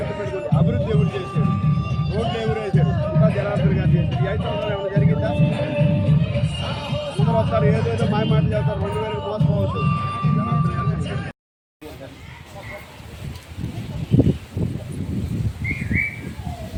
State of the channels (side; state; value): both; identical; correlation 1.00